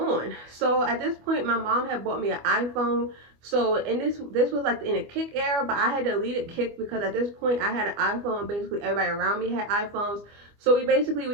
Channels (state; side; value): late; left; 25 ms